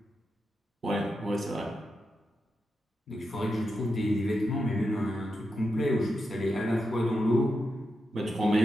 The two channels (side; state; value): both; normal; correlation 0.87